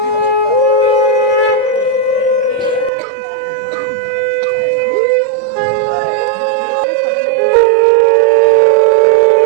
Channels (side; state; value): left; drops out; at 2.9 s